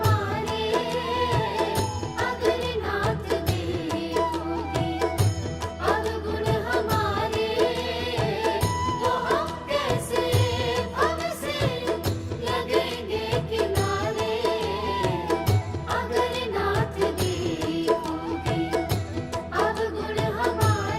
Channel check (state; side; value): identical; both; correlation 1.00